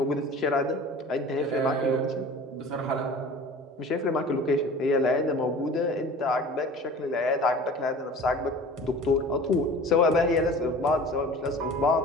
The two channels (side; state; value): both; normal; correlation 0.41